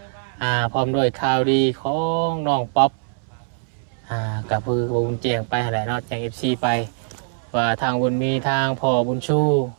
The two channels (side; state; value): left; silent; 64 dB below the other